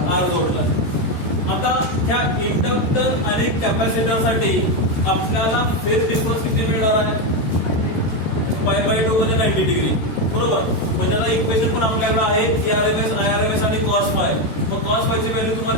R जोडलाय. आता त्या इंडक्टर आणि कॅपॅसिटर साठी आपल्याला फेज डिफरन्स किती मिळणार आहे? π/2 म्हणजे 90 डिग्री. बरोबर. म्हणजे आता इक्वेशन पण आपल्याकडे आहे ERMS, IRMS आणि cos फाय. मग cos फायची व्हॅल्यू तुम्हाला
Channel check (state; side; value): late; right; 13 ms